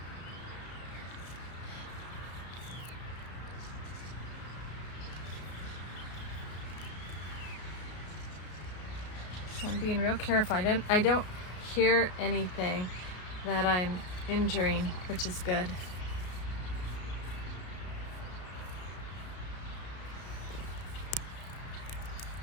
So I'm being real careful. I don't hear anything that I'm injuring, which is good.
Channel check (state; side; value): late; right; 33 ms